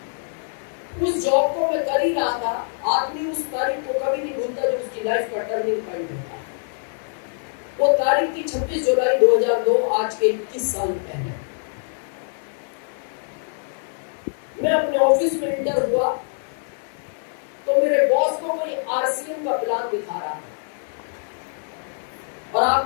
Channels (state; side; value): silent; right; digital silence